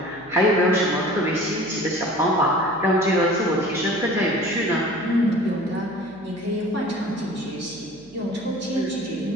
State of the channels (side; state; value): right; noise; hum, 26 dB below the sound